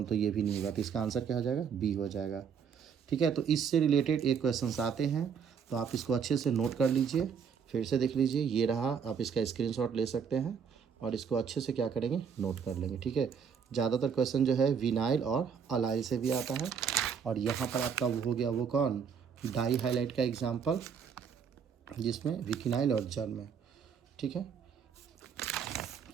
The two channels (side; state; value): left; quieter; 6.9 dB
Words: तो ये भी नहीं होगा। तो इसका आंसर क्या हो जाएगा? बी हो जाएगा। ठीक है, तो इससे रिलेटेड एक क्वेश्चन आते हैं, तो आप इसको अच्छे से नोट कर लीजिए, फिर से देख लीजिए। ये रहा, आप इसका स्क्रीनशॉट ले सकते हैं और इसको अच्छे से क्या करेंगे? नोट कर लेंगे। ठीक है, ज़्यादातर क्वेश्चन जो है विनाइल और अलाइल से भी आता है। और यहाँ पर आपका वो हो गया, वो कौन? डाई हाइलाइट का एग्जाम्पल, जिसमें विकिनाइल और जर्म। ठीक है,